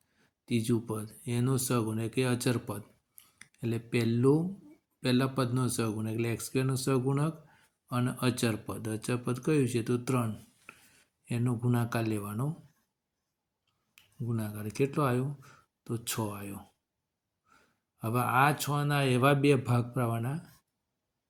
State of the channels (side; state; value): both; identical; correlation 1.00